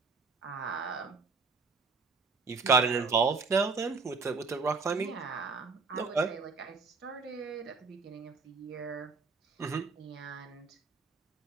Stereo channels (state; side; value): quieter; left; 4.4 dB